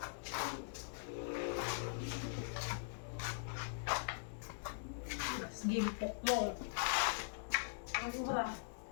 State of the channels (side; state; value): right; silent; digital silence